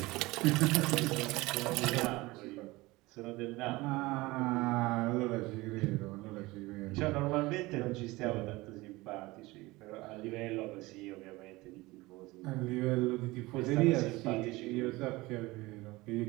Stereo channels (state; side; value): quieter; left; 21.0 dB